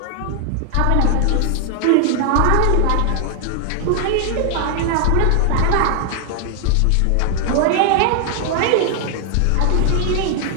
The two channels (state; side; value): different; both; correlation 0.00